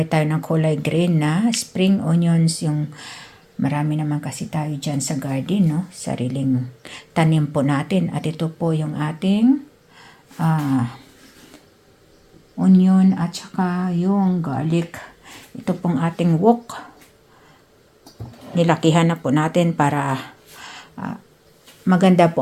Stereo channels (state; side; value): identical; both; correlation 1.00